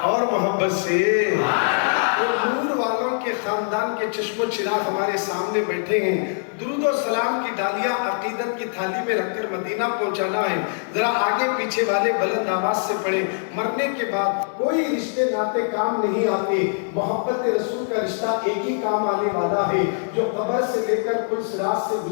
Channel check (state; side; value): silent; right; digital silence